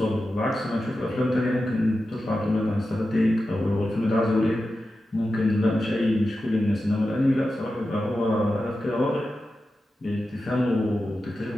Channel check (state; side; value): normal; both; correlation 0.92